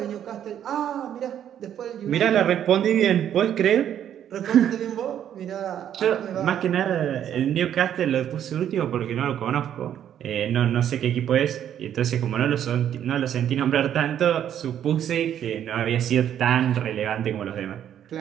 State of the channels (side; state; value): left; quieter; 10.0 dB